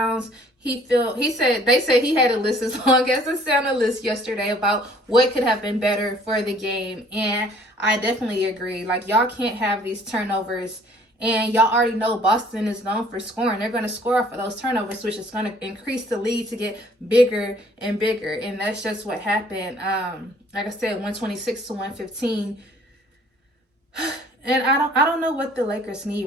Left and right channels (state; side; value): normal; both; correlation 0.57